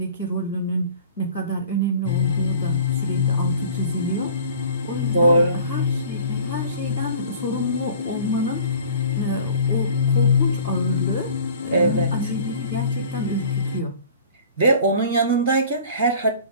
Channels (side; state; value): both; inverted; correlation -0.47